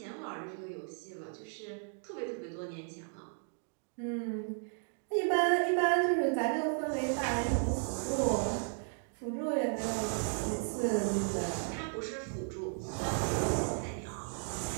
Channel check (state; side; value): silent; left; 55 dB below the other